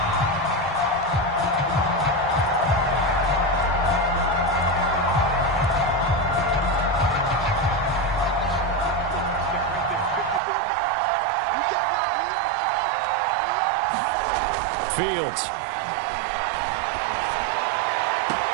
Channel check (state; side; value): drops out; left; at 10.4 s